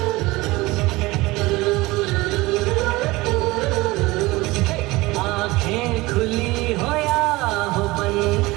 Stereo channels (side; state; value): left; quieter; 21.1 dB